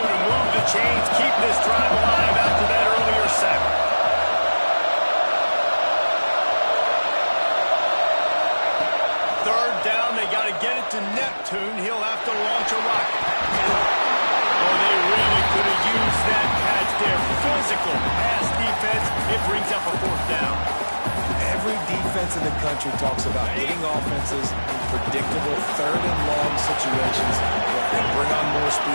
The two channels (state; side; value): inverted; both; correlation -1.00